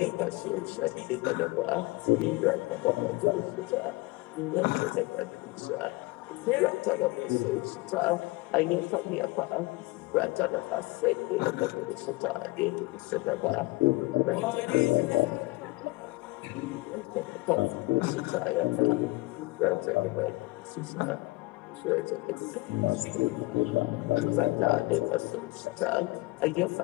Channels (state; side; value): quieter; right; 21.9 dB